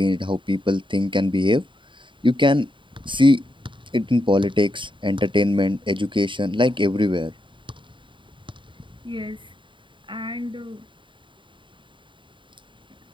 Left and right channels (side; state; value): left; late; 0.24 ms